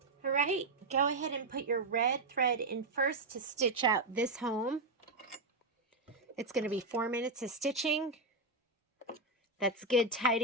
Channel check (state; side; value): quieter; left; 3.0 dB